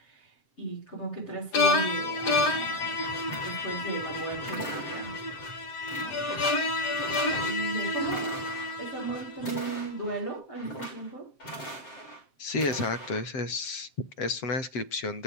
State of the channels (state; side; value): late; right; 7.6 ms